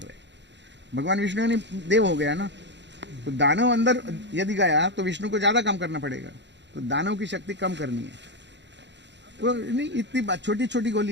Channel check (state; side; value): late; left; 0.52 ms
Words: हैं। भगवान विष्णु ने देव हो गया ना, तो दानव अंदर यदि गया तो विष्णु को ज्यादा काम करना पड़ेगा, तो दानव की शक्ति कम करनी है। तो नहीं, इतनी बात, छोटी छोटी